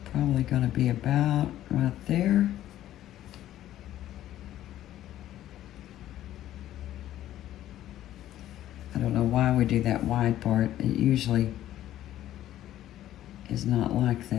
probably going to be about right there. I don't know why we do that wide part. It usually is not like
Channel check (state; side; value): quieter; right; 12.9 dB